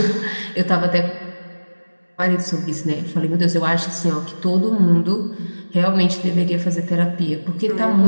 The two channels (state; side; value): inverted; both; correlation -1.00